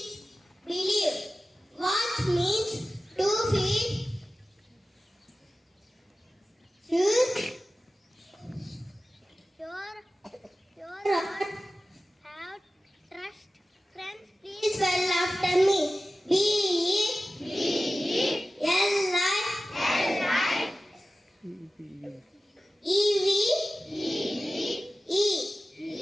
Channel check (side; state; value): both; normal; correlation 0.95